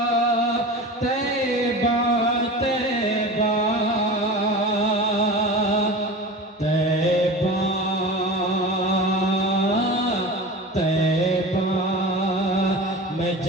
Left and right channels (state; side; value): normal; both; correlation 0.32